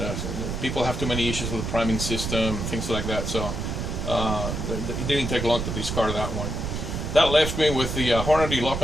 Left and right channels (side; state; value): right; noise; rumble, 3 dB below the sound